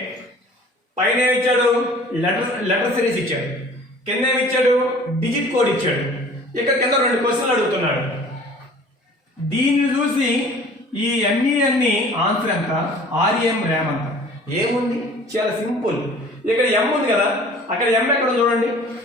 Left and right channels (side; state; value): both; normal; correlation 0.48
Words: పైన ఏమి ఇచ్చాడు? లెటర్ సిరీస్ ఇచ్చాడు. కింద ఏమి ఇచ్చాడు? డిజిట్ కోడ్ ఇచ్చాడు. ఇక్కడ కింద 2 క్వశ్చన్లు అడుగుతున్నాడు. దీన్ని చూసి ఈ ME ఆన్సర్ ఎంత, REM ర్యామ్ ఎంత? ఏముంది? చాలా సింపుల్. ఇక్కడ M ఉంది కదా, అక్కడ M ఎక్కడ చూడండి.